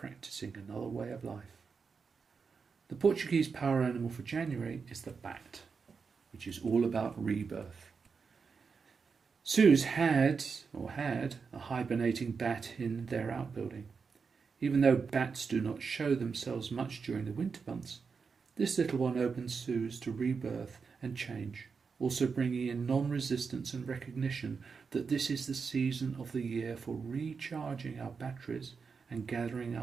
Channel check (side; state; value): left; quieter; 5.4 dB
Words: another way of life. The Portuguese power animal for January is the bat, which is all about rebirth. Suze had a hibernating bat in their outbuilding. Even though bats do not show themselves much during the winter months, this little one opens Suze to rebirth and change, also bringing in non-resistance and recognition that this is the season of the year for recharging our batteries and gathering